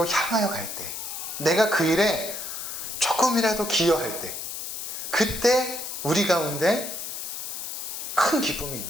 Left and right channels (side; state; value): left; noise; hiss, 6 dB below the sound